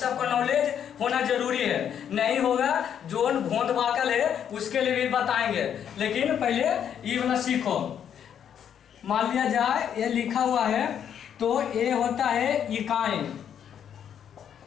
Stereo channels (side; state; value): right; quieter; 8.9 dB